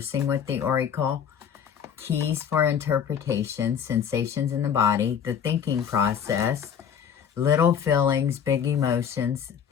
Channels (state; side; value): quieter; right; 7.9 dB